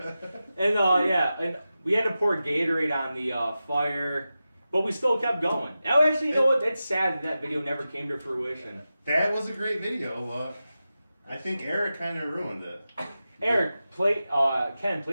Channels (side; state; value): both; inverted; correlation -0.93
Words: And and we had to pour Gatorade on the fire, but we still kept going. Oh, actually, you know what? It's sad that video never came to fruition. That was a great video. I think Eric kind of ruined it. Eric, Ken,